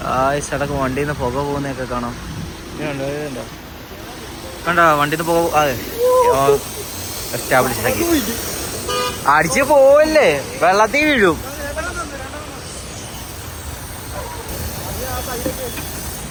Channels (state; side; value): identical; both; correlation 1.00